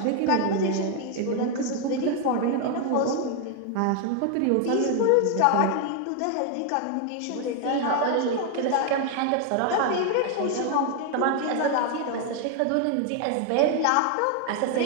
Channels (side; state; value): both; different; correlation 0.00